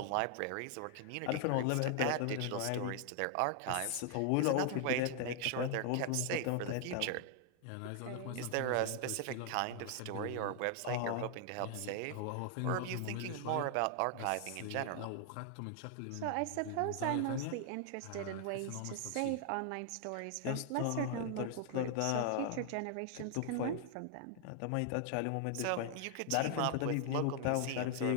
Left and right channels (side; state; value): both; different; correlation 0.00